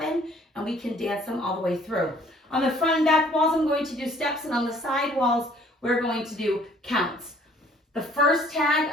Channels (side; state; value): both; normal; correlation 0.58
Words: and we can dance them all the way through. On the front and back walls, I'm going to do steps, and on the side walls, we're going to do counts. The first tag,